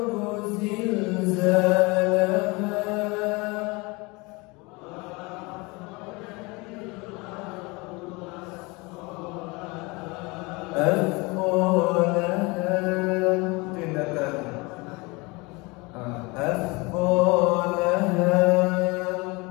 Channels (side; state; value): right; quieter; 25.9 dB